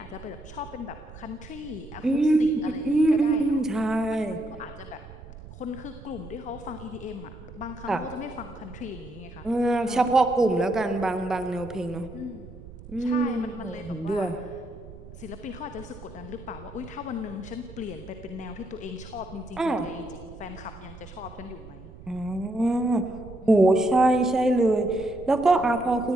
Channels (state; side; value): noise; right; rumble, 16 dB below the sound